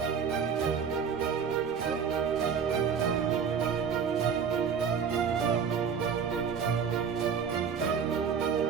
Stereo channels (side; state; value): left; quieter; 6.7 dB